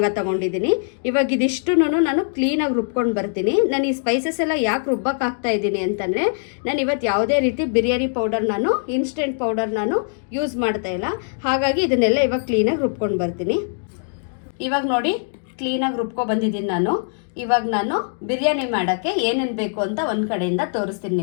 ತೊಗೊಂಡಿದ್ದೀನಿ. ಇವಾಗ ಇದಿಷ್ಟು ನಾನು ಕ್ಲೀನಾಗಿ ರುಬ್ಕೊಂಡು ಬರ್ತೀನಿ. ನಾನು ಈ ಸ್ಪೈಸಸ್ ಎಲ್ಲ ಯಾಕೆ ರುಬ್ಬಕ್ಕೆ ಹಾಕ್ತಾ ಇದ್ದೀನಿ ಅಂತಂದರೆ, ನಾನು ಇವತ್ತು ಯಾವುದೇ ರೀತಿ biryani powder, instant powder use ಮಾಡ್ತಾ ಇಲ್ಲ. ಹಾಗಾಗಿ ಇದನ್ನೆಲ್ಲ ಇವಾಗ ಕ್ಲೀನಾಗಿ ರುಬ್ಕೊಂಡು ಬರ್ತೀನಿ. ಇವಾಗ ನೋಡಿ ಕ್ಲೀನಾಗಿ ರುಬ್ಕೊ ಬಂದಿದ್ದೀನಿ ನಾನು. ಇವಾಗ ನಾನು ಬಿರಿಯಾನಿ ಮಾಡೋಕ್ಕೆ ಏನೇನು ಬೇಕು ಅಂತ ಒಂದು ಕಡೆಯಿಂದ ತೋರಿಸ್ತೀನಿ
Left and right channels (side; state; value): right; silent; digital silence